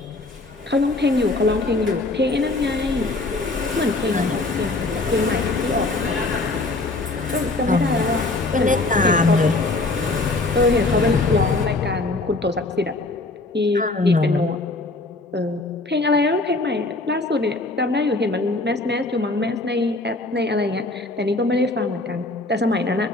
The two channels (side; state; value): right; quieter; 3.1 dB